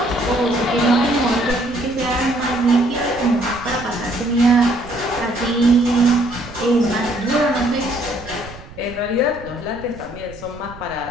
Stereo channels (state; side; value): noise; right; rumble, 18 dB below the sound